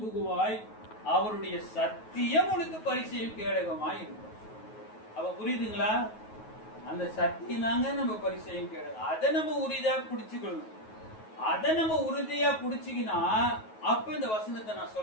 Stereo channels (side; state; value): right; late; 9.3 ms